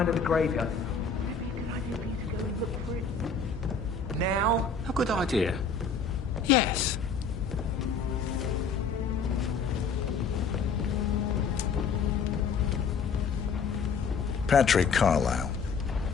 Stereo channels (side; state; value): right; quieter; 5.2 dB